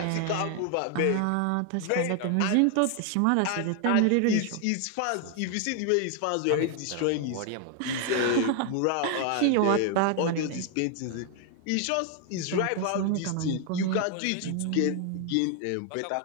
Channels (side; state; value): both; different; correlation 0.00